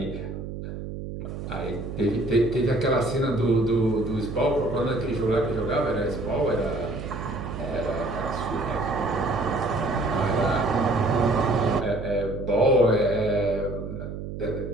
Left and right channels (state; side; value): noise; right; hum, 8 dB below the sound